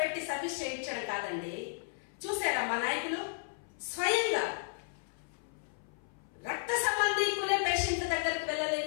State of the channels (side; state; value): right; silent; 55 dB below the other